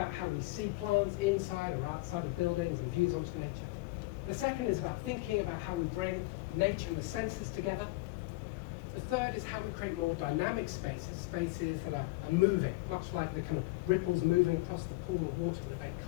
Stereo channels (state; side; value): quieter; right; 22.3 dB